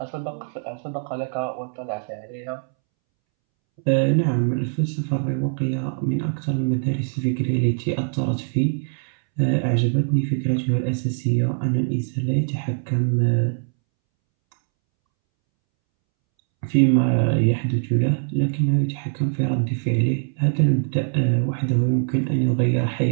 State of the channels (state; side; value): silent; left; 64 dB below the other